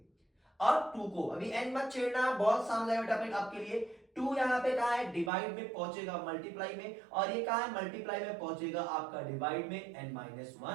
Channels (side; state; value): left; drops out; at 5.3 s